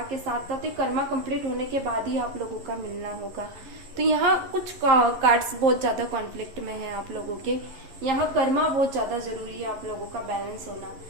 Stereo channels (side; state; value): left; late; 11 ms